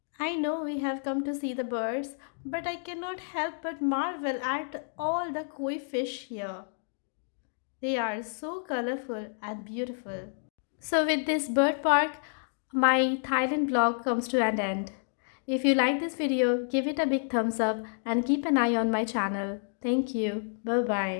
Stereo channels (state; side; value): silent; right; digital silence